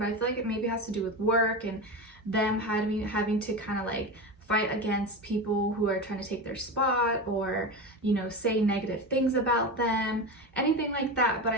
I feel like it maybe has to do with work and them having to kind of like fight against people who are trying to take their spot, or, you know, say negative things about them, anything like that. But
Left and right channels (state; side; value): normal; both; correlation 0.22